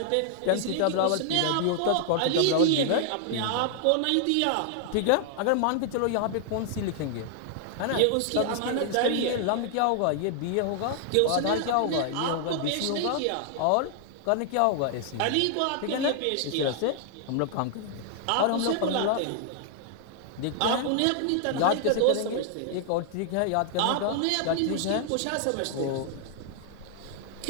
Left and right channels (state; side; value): different; both; correlation 0.00